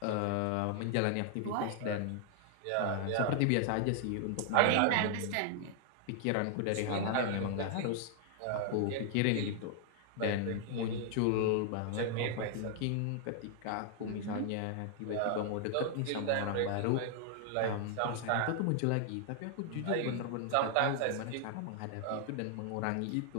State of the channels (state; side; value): different; both; correlation 0.00